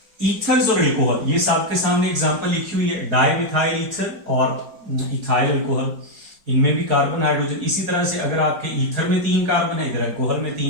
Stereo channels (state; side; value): late; left; 4.9 ms